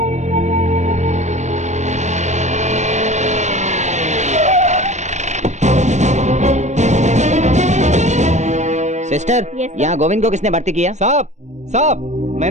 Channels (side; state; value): left; late; 0.34 ms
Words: सिस्टर, यहाँ गोविंद को किसने भर्ती किया? साहब, साहब,